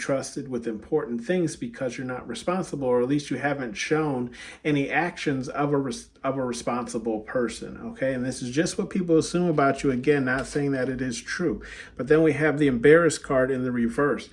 with important things because you're not responsible, or at least you haven't shown any actions of a responsible person, okay? And this is just what people assume about you. Again, not saying that it is true. But then we have the embarrassed card in the reverse,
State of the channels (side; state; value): both; identical; correlation 1.00